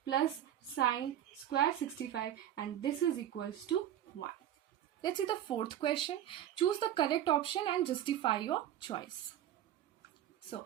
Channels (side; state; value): left; quieter; 11.4 dB